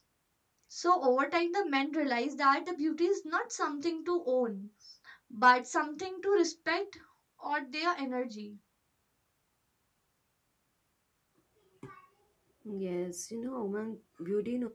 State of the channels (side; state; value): both; identical; correlation 1.00